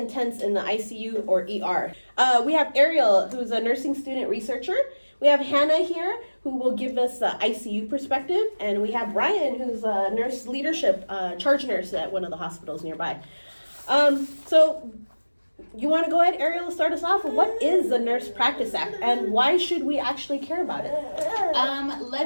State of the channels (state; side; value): inverted; both; correlation -1.00